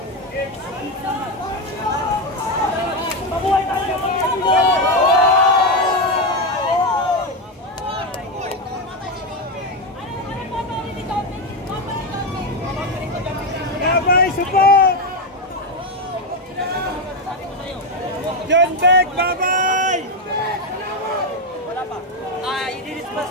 Mabuhay tayo! Babay, support! John Beck, babay! Wala pa. I-disperse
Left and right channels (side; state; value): both; normal; correlation 0.09